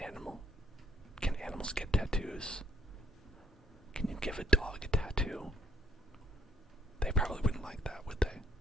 animal? Can animals get tattoos? Can you give a dog a tattoo? They probably wouldn't like that, would they?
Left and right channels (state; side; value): normal; both; correlation 0.66